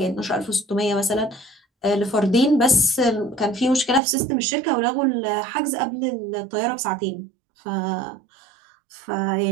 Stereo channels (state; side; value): drops out; left; at 4.0 s